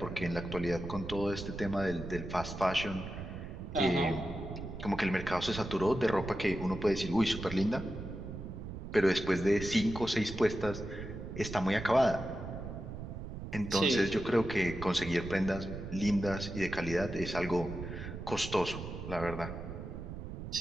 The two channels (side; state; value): right; noise; rumble, 8 dB below the sound